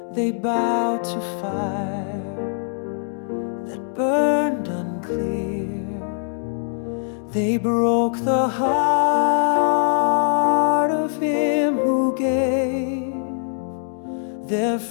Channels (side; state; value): right; silent; digital silence